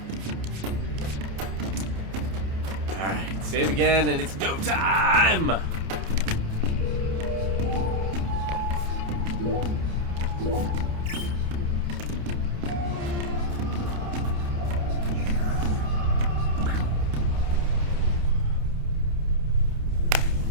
Alright, save again, and it's go time!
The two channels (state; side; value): late; left; 29 ms